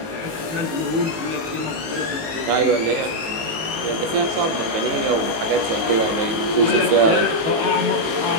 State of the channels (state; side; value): late; left; 19 ms